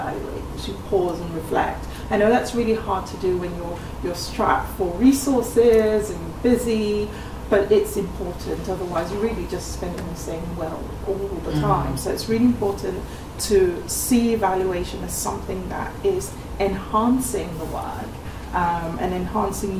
as you pause and reflect. I know that's really hard to do when you're strapped for resources and you're busy, but it's important, otherwise you're really just spending the same well all the time. So it's really important to see evaluation as something that is enhancing the work and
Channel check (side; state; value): both; identical; correlation 1.00